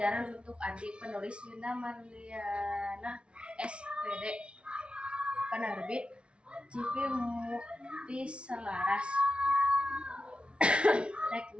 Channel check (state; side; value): late; left; 0.058 ms